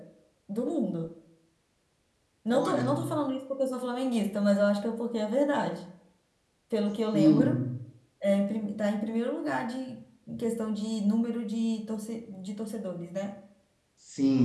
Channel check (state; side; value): identical; both; correlation 1.00